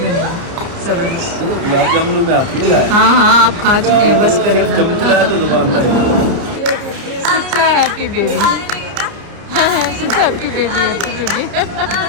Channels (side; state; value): left; late; 30 ms